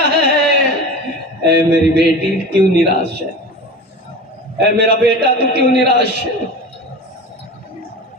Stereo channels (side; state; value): both; normal; correlation 0.32